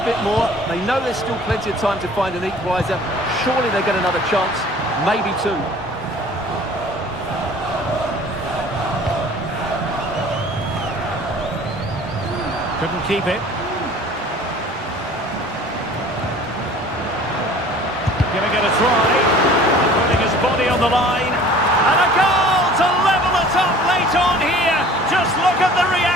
more. They know there's still plenty of time to find an equaliser. Surely they'll get another chance, maybe two. Couldn't keep it. Giving it a try. Putting his body on the line. And a goal to level it up late on here. Just look at the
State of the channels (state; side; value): normal; both; correlation 0.48